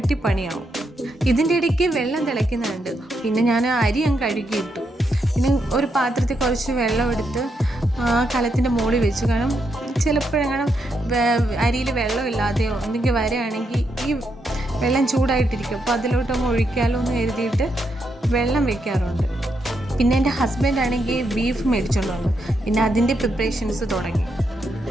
പണിയാവും. ഇതിൻ്റെ ഇടയ്ക്ക് വെള്ളം തിളയ്ക്കുന്നുണ്ട്. പിന്നെ ഞാൻ അരി അങ്ങ് കഴുകിയിട്ടു. പിന്നെ ഒരു പാത്രത്തിൽ കുറച്ച് വെള്ളം എടുത്ത് കലത്തിൻ്റെ മുകളിൽ വെച്ചു. കാരണം ചിലപ്പോഴെങ്ങനെ അരിയിൽ വെള്ളമില്ലാതെയോ എന്തെങ്കിലും വരികയാണെങ്കിൽ ഈ വെള്ളം ചൂടായിട്ടിരിക്കും. അപ്പോൾ അതിലോട്ടൊന്ന് ഒഴിക്കാലോ എന്ന് കരുതിയിട്ട് വെള്ളം വെക്കാറുണ്ട്. പിന്നെ എൻ്റെ ഹസ്ബൻഡ് ആണെങ്കിൽ ബീഫ് മേടിച്ചുകൊണ്ട് വന്നു. പിന്നെ അതിൻ്റെ പ്രിപ്പറേഷൻസ് തുടങ്ങി.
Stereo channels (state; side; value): normal; both; correlation 0.81